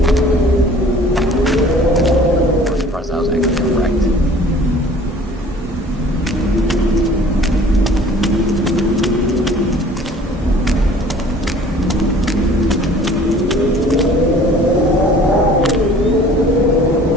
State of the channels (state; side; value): normal; both; correlation 0.50